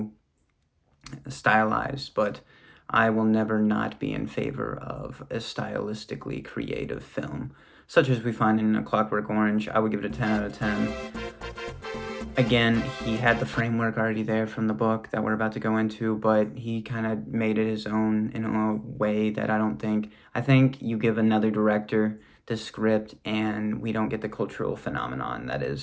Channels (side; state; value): both; identical; correlation 1.00